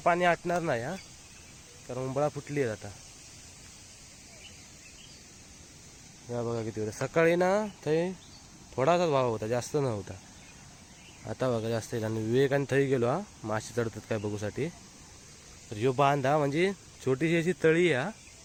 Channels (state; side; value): identical; both; correlation 1.00